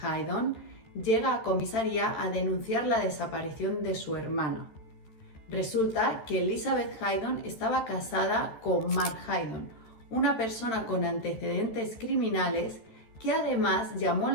Haydon llega a comisaría a denunciar la desaparición de su hermana. Resulta que Elizabeth Haydon estaba casada con Mark Haydon, una persona con antecedentes criminales que además llamó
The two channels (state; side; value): late; right; 13 ms